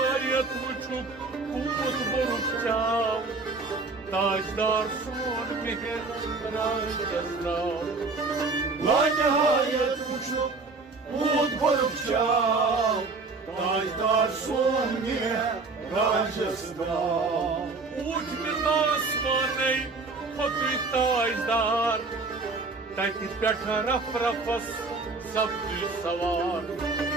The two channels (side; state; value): left; quieter; 3.9 dB